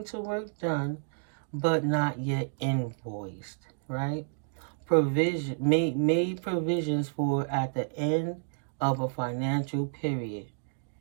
to work done but not yet invoiced, right? Provision made provisions for at the end of a financial period.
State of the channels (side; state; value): left; silent; digital silence